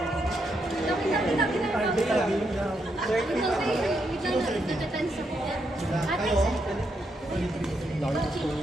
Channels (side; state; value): both; normal; correlation 0.79